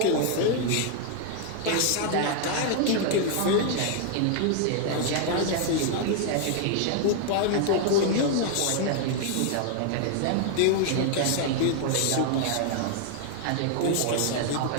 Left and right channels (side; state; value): both; different; correlation 0.00